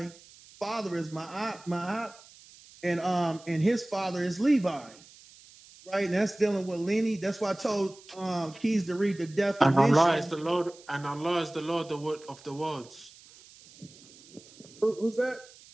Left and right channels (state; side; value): noise; right; hiss, 23 dB below the sound